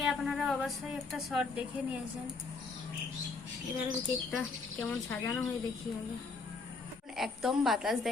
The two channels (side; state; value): right; quieter; 4.2 dB